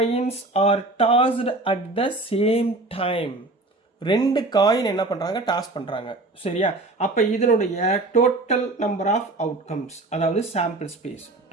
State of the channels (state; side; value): quieter; left; 3.0 dB